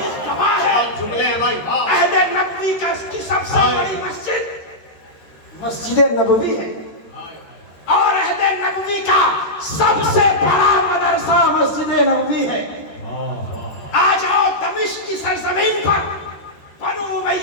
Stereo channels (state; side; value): late; right; 13 ms